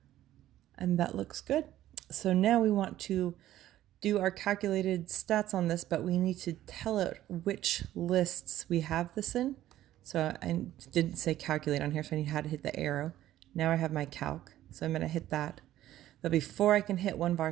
And that looks good. So now we want to do our calculated stats on this, but we need to tell it which lists we have this in. So I didn't say calculate on here, so I had to hit the arrow. Now I have my calc, so I'm going to hit that. But before I can hit one of our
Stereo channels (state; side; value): quieter; left; 13.5 dB